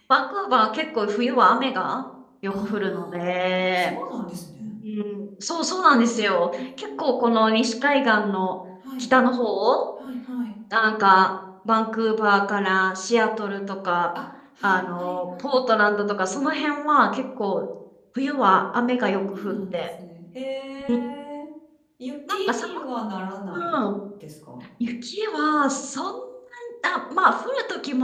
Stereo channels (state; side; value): identical; both; correlation 1.00